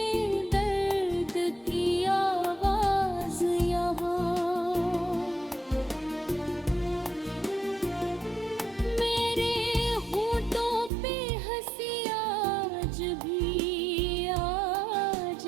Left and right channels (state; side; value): drops out; left; at 10.9 s